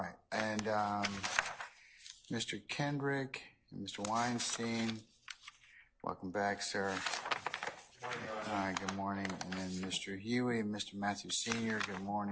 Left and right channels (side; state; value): both; identical; correlation 1.00